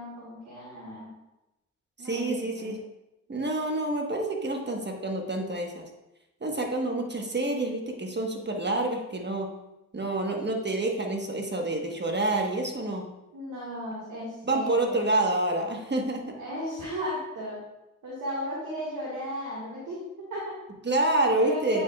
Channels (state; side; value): normal; both; correlation -0.04